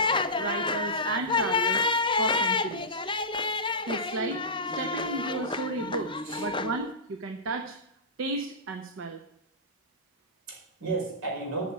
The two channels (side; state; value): both; normal; correlation -0.18